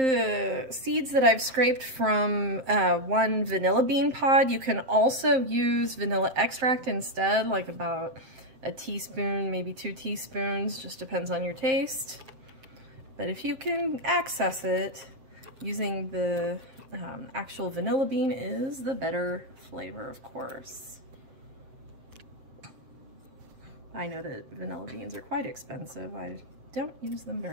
seeds that I've scraped from one vanilla bean pod. You can also use vanilla extract instead, like about a teaspoon, maybe 2 teaspoons, just depends on your taste. But if you can access it, using the actual vanilla bean is the better flavor, of course. I know that vanilla beans are quite expensive. I don't use them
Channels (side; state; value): left; late; 7.6 ms